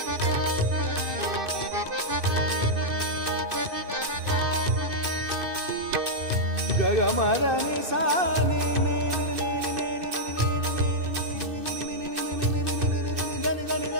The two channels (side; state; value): left; late; 2.6 ms